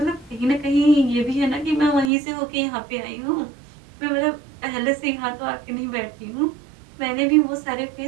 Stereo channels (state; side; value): drops out; left; at 2.1 s